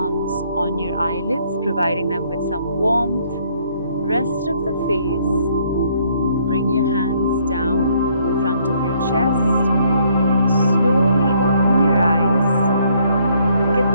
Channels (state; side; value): inverted; both; correlation -0.67